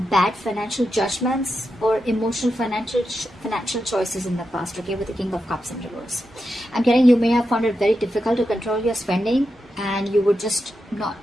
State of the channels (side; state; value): both; normal; correlation 0.88